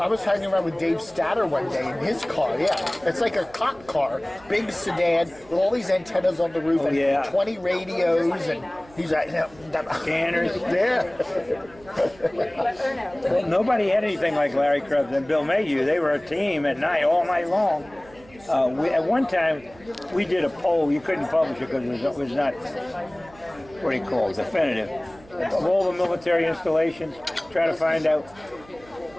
was hanging around with Dave Statter one day in his car, yeah. It's like a cop car, big sedan, with all these antennas on the roof and 20 radios, and he's like, Scanners. Yeah. Well, nobody had anything like Larry Krebs and Bill Mayhew. They were a team at night, all night long. At one time, we did a poll. You couldn't publish it because it was not, what do you call it, definitive. Of all the military installations, try to find out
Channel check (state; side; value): noise; right; hum, 24 dB below the sound